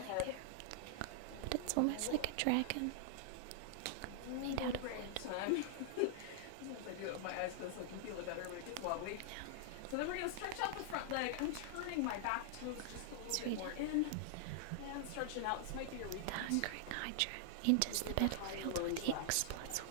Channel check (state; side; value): different; both; correlation -0.01